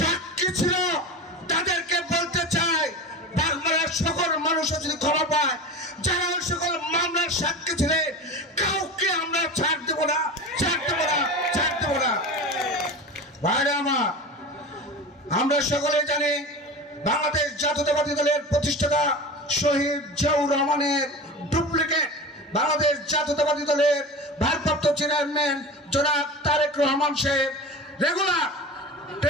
ছিল, তাদেরকে বলতে চাই বাগমারার সকল মানুষও যদি ক্ষমা পায়, যারা ওই সকল মামলার সাক্ষী ছিলেন কাউকে আমরা ছাড় দেবো না, ছাড় দেবো না, ছাড় দেবো না। ভাইরা আমার, আমরা সকলে জানি বাংলাদেশ জাতীয়তাবাদী দলের প্রতিষ্ঠাতা শহীদ জিয়াউর রহমানের ডুপ্লিকেট বাংলাদেশ জাতীয়তাবাদী দলের ভারপ্রাপ্ত চেয়ারম্যান জনাব তারেক রহমান সাহেব রেগুলার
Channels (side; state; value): both; normal; correlation 0.30